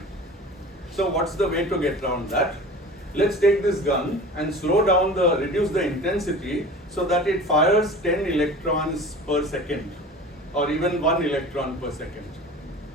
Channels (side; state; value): both; normal; correlation 0.39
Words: So what's the way to get around that? Let's take this gun and reduce the intensity so that it fires 10 electrons per second, or even 1 electron per second.